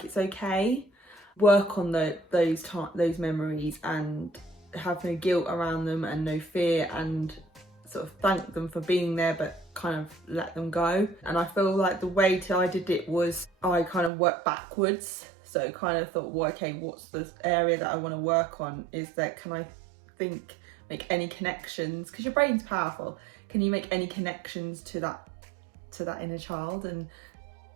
it's okay. Work on those memories and have no guilt around them and no fear, and sort of thank them for being there, but kind of let them go. And I feel like the way I did it was I kind of worked backwards. So kind of thought, well, okay, what's the area that I want to work on? Is that, can I make any connections, because your brain's powerful, can you make any connections to that inner child? And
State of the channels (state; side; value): drops out; left; at 14.1 s